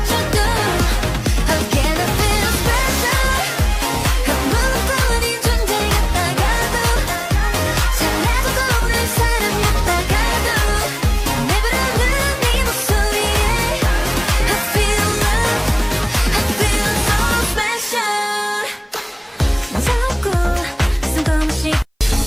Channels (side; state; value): both; identical; correlation 1.00